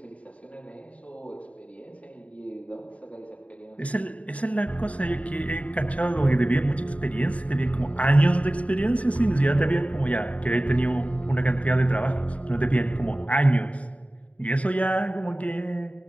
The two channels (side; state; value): right; late; 0.066 ms